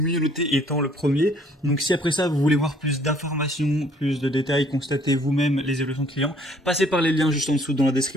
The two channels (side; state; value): both; normal; correlation 0.60